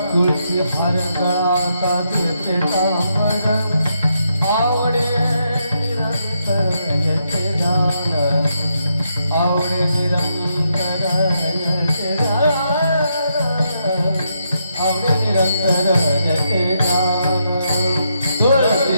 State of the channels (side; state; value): both; inverted; correlation -0.80